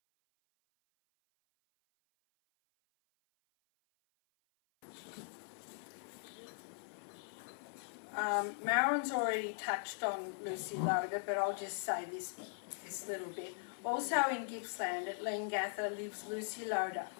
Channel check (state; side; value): silent; right; 51 dB below the other